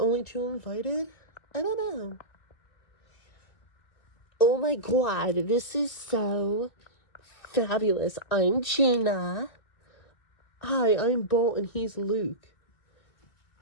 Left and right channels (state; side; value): late; right; 2.4 ms